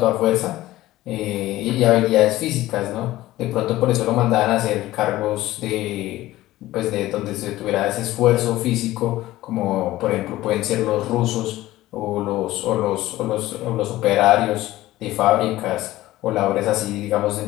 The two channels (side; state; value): right; quieter; 16.3 dB